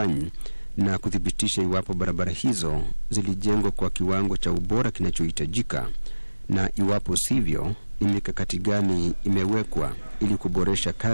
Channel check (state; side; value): inverted; both; correlation -1.00